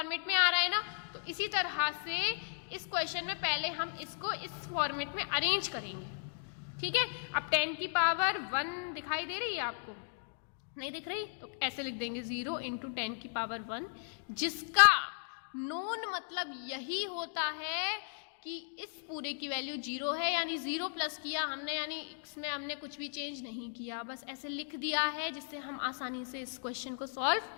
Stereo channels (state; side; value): silent; right; digital silence